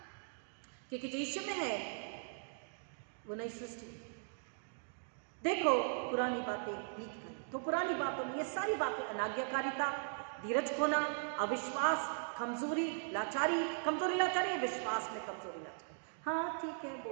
क्योंकि जो यीशु में है वो नई सृष्टि। देखो पुरानी बातें बीत गई, तो पुरानी बातों में ये सारी बातें, अनाज्ञाकारिता, धीरज खोना, अविश्वास, कमजोरी, लाचारी, कमजोरी लाचारी, विश्वास में कमजोरी लाचारी। हाँ ठीक है,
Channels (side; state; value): left; silent; digital silence